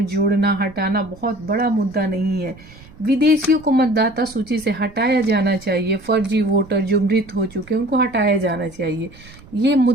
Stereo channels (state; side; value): noise; right; rumble, 22 dB below the sound